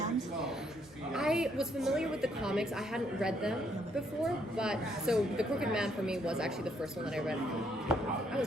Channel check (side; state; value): both; normal; correlation 0.71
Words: I was familiar with the comics. I hadn't read them before, but so The Crooked Man for me was actually the first one that I read. I